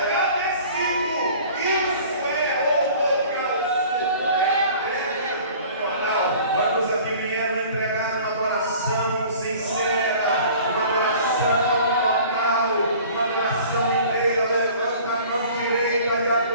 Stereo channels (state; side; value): inverted; both; correlation -0.47